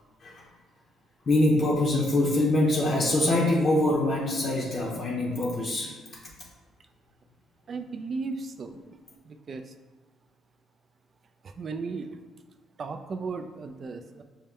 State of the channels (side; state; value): both; normal; correlation 0.74